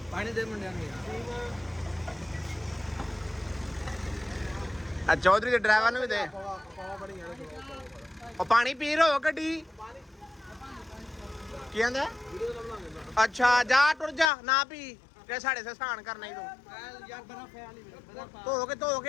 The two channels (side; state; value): right; drops out; at 14.3 s